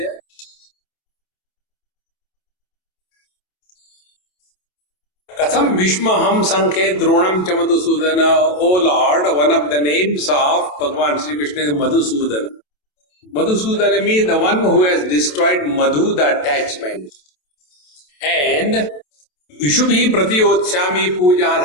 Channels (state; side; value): late; right; 27 ms